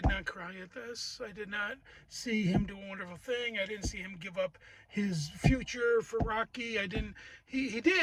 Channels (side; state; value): both; identical; correlation 1.00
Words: not cry at this. I did not see him do a wonderful thing. I didn't see him give up his future for Rocky. He